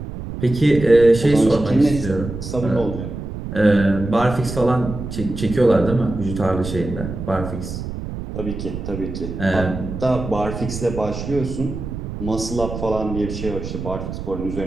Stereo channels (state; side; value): noise; right; rumble, 7 dB below the sound